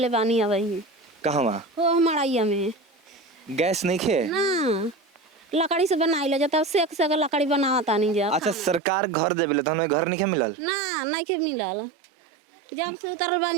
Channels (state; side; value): drops out; left; at 8.8 s